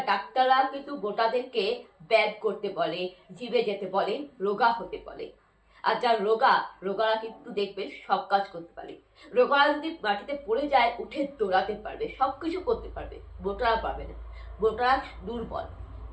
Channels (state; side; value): identical; both; correlation 1.00